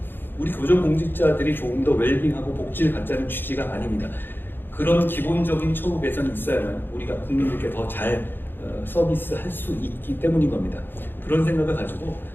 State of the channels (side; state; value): right; late; 0.099 ms